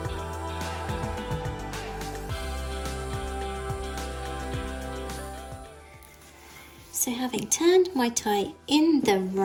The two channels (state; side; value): identical; both; correlation 1.00